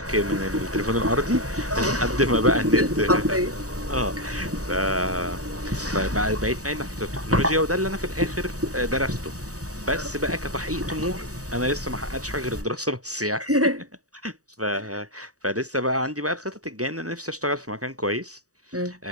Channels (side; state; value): left; late; 0.66 ms